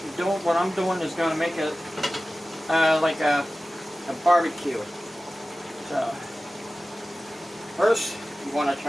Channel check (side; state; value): both; normal; correlation 0.96